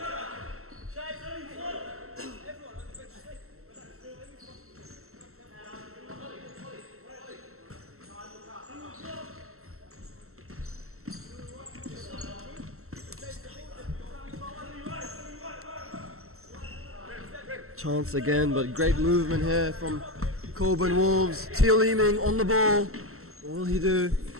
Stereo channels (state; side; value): late; left; 0.63 ms